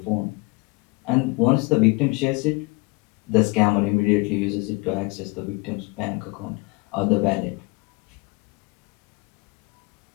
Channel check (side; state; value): right; quieter; 26.9 dB